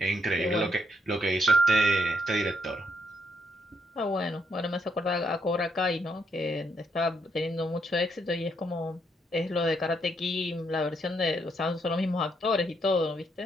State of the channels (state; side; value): normal; both; correlation 0.74